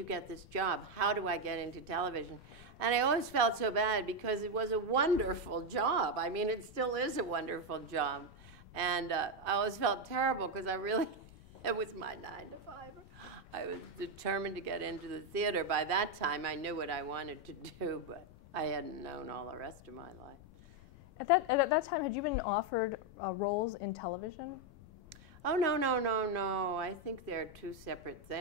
get this job? How do I get into television? And I always felt so bad because it was a wonderful job. I mean, it still is a wonderful job. And I always felt terrible because it was my 9 to 5. I was determined to get into the theater. By that time, I knew what I wanted to do, but I hadn't known all the rest of my life. At that time, had you been offered roles in television? Oh, no, no, no, no. I think they're two separate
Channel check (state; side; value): noise; left; rumble, 21 dB below the sound